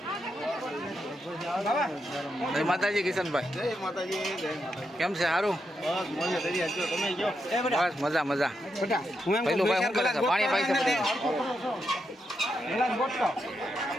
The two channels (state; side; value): normal; both; correlation 0.83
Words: જય માતાજી કિશનભાઈ, કેમ છે? સારું, બસ મજા મજા. પહેલું ભાઈ શું કરે છે? પાણી પાઈ છે બધું.